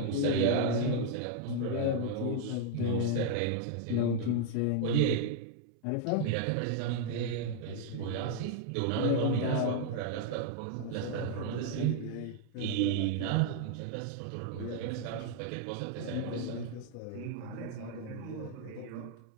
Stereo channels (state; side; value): different; both; correlation 0.00